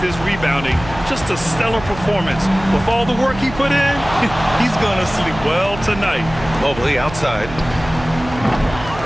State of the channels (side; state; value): right; noise; hum, 13 dB below the sound